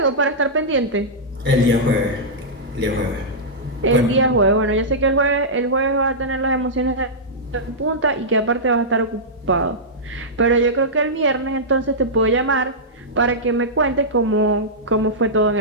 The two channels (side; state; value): both; normal; correlation -0.12